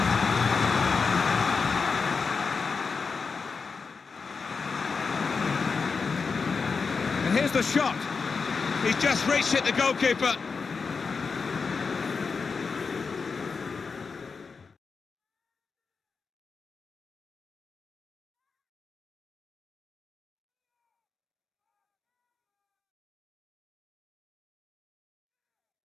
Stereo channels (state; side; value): quieter; right; 5.0 dB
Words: And here's the shot. He's just reached it, the goalkeeper.